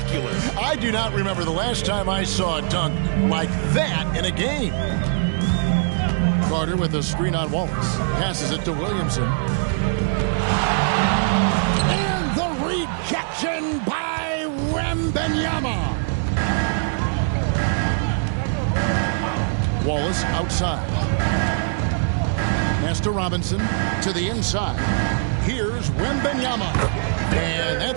I do not remember the last time I saw a dunk like that in a game. Carter with a screen on Wallace. Passes it to Williamson. And the rejection by Wembanyama. Wallace outside. Pass to Robinson. To the inside. Here's Wembanyama. And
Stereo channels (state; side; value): silent; left; digital silence